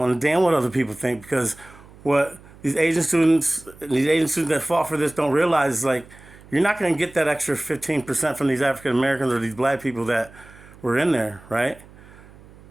damn what other people think, because what these Asian students that fought for this don't realize is like you're not going to get that extra 15% from these African Americans or these black people that were in there, right?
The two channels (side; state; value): right; noise; hum, 22 dB below the sound